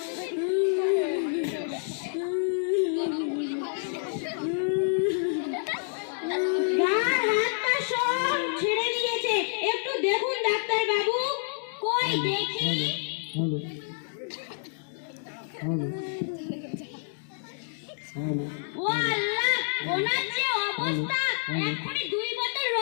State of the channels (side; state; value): right; silent; digital silence